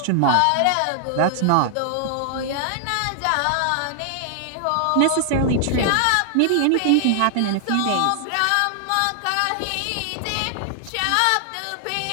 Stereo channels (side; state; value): both; different; correlation 0.00